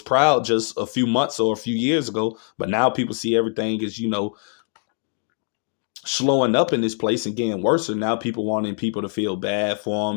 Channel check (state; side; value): silent; right; 56 dB below the other